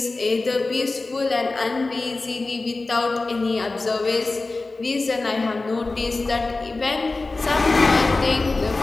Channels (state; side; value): quieter; right; 3.4 dB